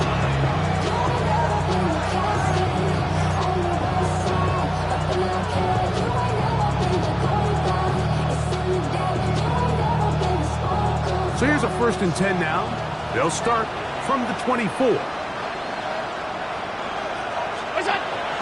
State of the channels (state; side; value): identical; both; correlation 1.00